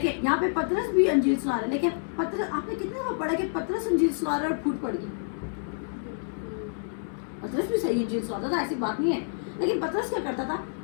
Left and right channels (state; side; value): silent; right; 59 dB below the other